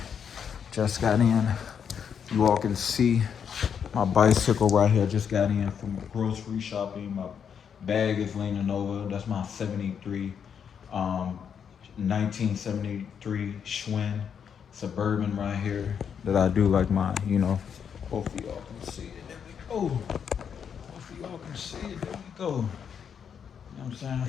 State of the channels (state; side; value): quieter; right; 7.5 dB